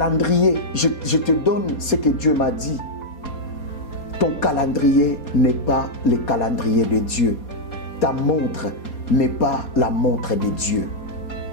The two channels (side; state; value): right; late; 4.2 ms